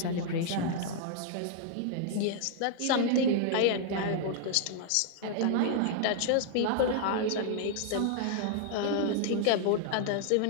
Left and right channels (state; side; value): different; both; correlation -0.01